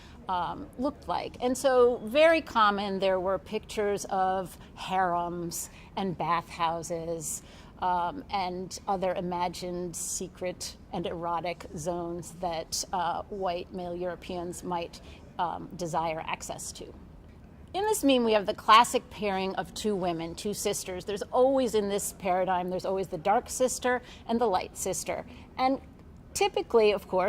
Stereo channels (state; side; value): identical; both; correlation 1.00